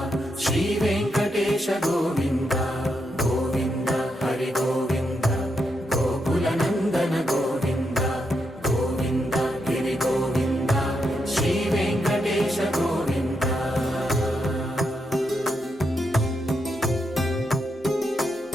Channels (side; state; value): both; normal; correlation 0.82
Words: శ్రీ వెంకటేశ గోవింద గోవింద హరి గోవింద గోకుల నందన గోవింద గోవింద గిరి గోవింద శ్రీ వెంకటేశ గోవింద